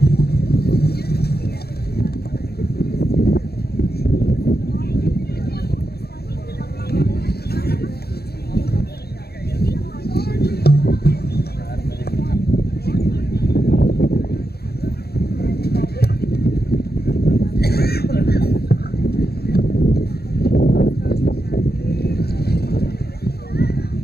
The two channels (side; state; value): right; late; 0.46 ms